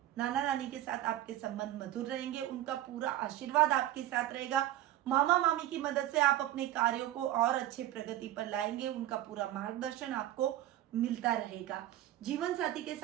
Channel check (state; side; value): quieter; left; 13.5 dB